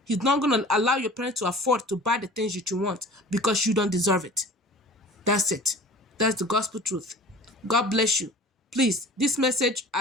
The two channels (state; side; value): normal; both; correlation 0.43